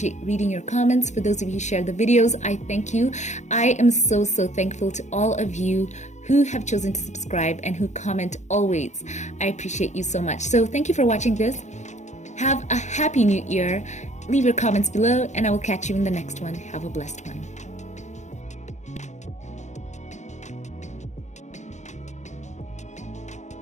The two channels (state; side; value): late; right; 0.34 ms